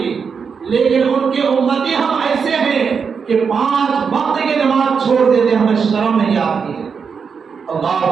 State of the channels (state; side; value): quieter; left; 6.0 dB